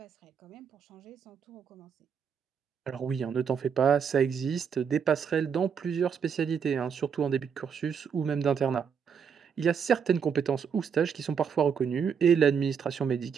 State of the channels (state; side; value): quieter; left; 7.0 dB